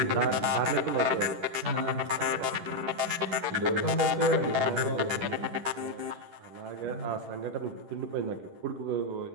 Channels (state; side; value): late; left; 10 ms